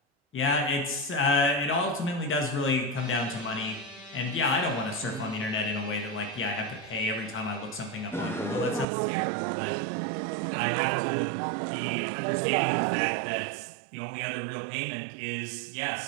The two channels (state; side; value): drops out; left; at 8.8 s